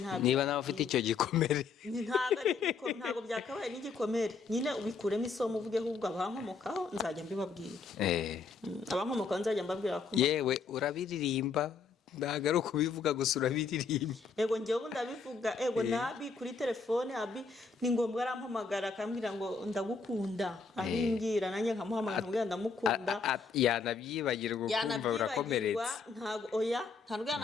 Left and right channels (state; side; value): quieter; right; 4.8 dB